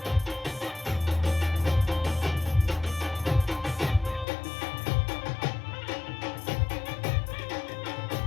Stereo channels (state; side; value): drops out; right; at 4.2 s